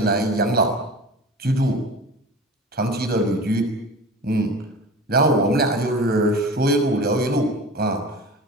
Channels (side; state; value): both; normal; correlation 0.36